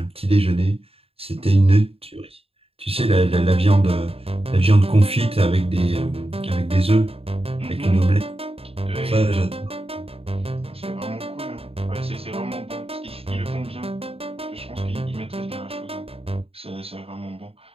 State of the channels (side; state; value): left; late; 0.28 ms